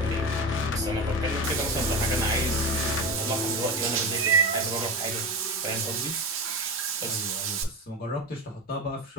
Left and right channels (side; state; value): both; normal; correlation 0.22